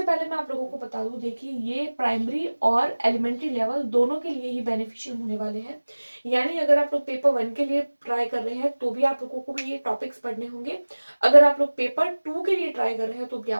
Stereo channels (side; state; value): both; inverted; correlation -1.00